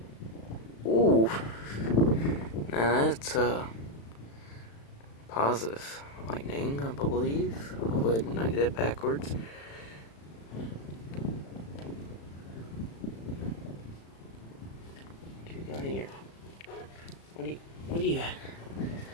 Ooh. Now that's positive lightning, I believe. I'll go ahead and I get it backwards. What you got here? What do you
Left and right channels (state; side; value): late; right; 35 ms